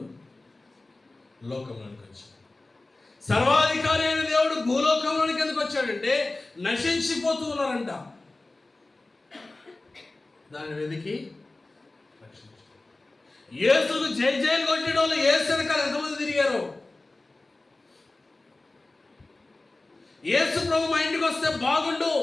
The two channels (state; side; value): quieter; right; 3.0 dB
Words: లోకంలోనికి వచ్చాడు. సర్వాధికారి అయిన దేవుడు భూలోకంలోనికి ఎందుకు వచ్చాడంటే నశించిపోతూ ఉన్నారంట. దాన్ని వెతికి రక్షించాడు. యేసుకు జై జైలు కొట్టిన వాళ్ళు యేసు వెనకాల ఎంతమంది తిరిగారు? యేసు ప్రభు మా ఇంటికి వస్తే బాగుండు,